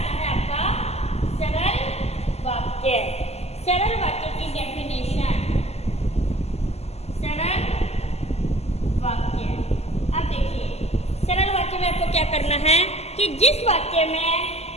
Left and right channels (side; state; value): right; late; 0.30 ms